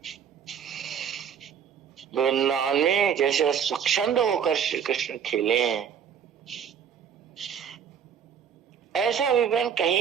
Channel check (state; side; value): quieter; left; 7.9 dB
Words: वृंदावन में जैसे स्वच्छंद होकर श्री कृष्ण खेले हैं, ऐसा विवरण